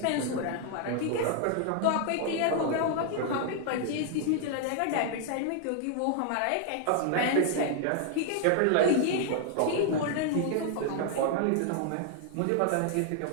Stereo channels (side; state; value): both; different; correlation 0.00